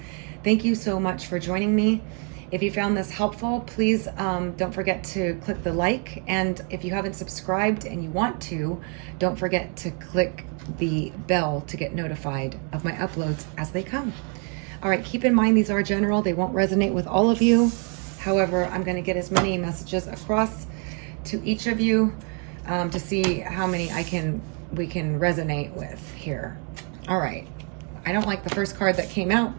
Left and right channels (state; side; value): quieter; left; 38.8 dB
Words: Thank you so much for joining me. If you found this helpful, please don't forget to click the like. And if you haven't subscribed and you want to, don't forget to click the bell to get notified of my uploads as they come. All right, keep in mind these are general. They won't resonate with all of you. However, I'm going to get as many messages across to each of you to see how many we can resonate with here. All right. I don't like the first card that came out,